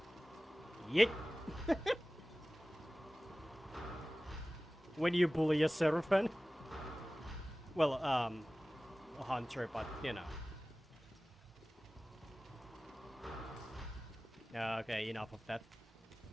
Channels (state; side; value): normal; both; correlation 0.97